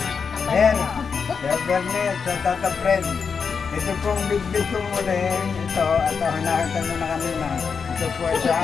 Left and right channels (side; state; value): right; quieter; 5.8 dB